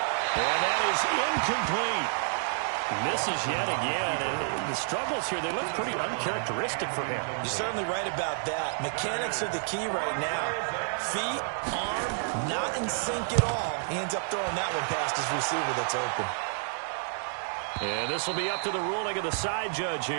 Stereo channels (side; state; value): left; silent; digital silence